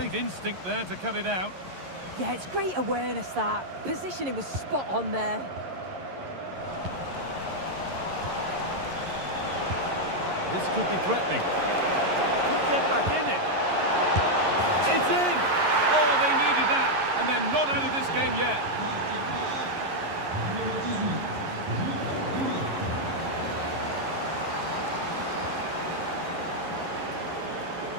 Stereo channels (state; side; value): late; left; 11 ms